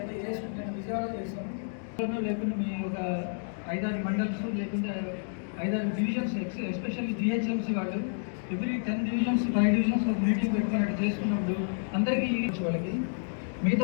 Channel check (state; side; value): silent; right; digital silence